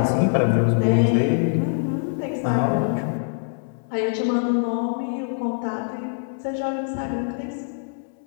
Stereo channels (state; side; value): silent; right; digital silence